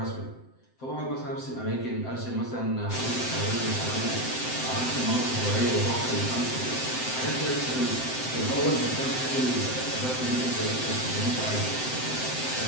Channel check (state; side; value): late; right; 7.8 ms